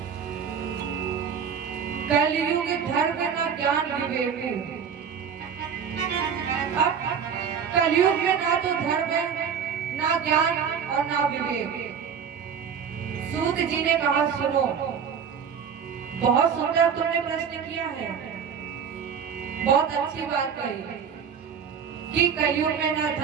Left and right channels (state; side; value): quieter; left; 7.2 dB